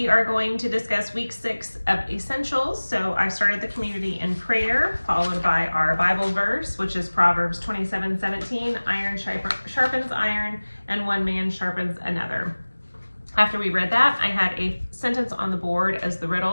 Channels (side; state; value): both; inverted; correlation -1.00